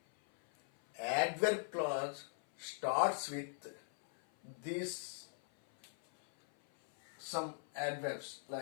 adverb clause starts with these some adverbs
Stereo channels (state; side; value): silent; right; 51 dB below the other